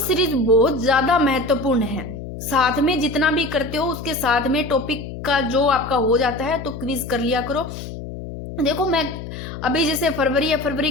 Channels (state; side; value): noise; left; hum, 10 dB below the sound